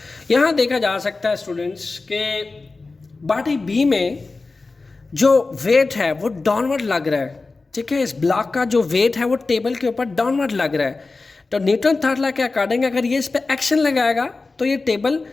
यहां देखा जा सकता है स्टूडेंट्स के बॉडी बी में जो वेट है वो डाउनवर्ड लग रहा है, ठीक है। इस ब्लॉक का जो वेट है वो टेबल के ऊपर डाउनवर्ड लग रहा है, तो न्यूटन थर्ड लॉ के अकॉर्डिंग अगर ये इस पर एक्शन लगाएगा तो ये टेबल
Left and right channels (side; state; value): right; quieter; 3.7 dB